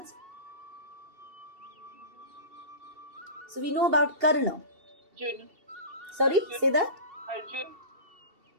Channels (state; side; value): late; left; 2.7 ms